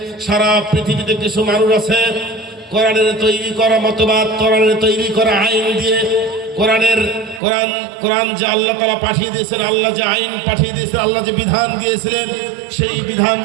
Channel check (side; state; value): left; drops out; at 7.4 s